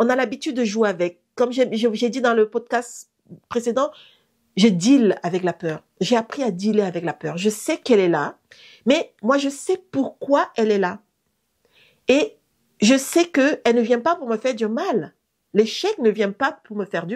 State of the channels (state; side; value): identical; both; correlation 1.00